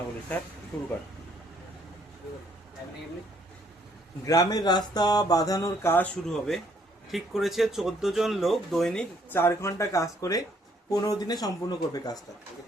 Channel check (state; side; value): normal; both; correlation 0.66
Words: বলি স্যার, শুরু কর। গ্রামের রাস্তা বাঁধানোর কাজ শুরু হবে। ঠিক করেছে 14 জন লোক দৈনিক 4 ঘন্টা কাজ করে 15 দিনে সম্পূর্ণ করবে কাজটা।